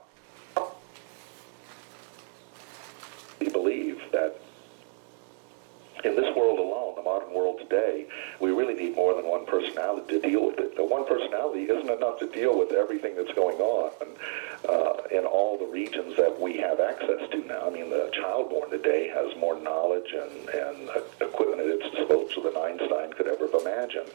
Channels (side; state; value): left; silent; digital silence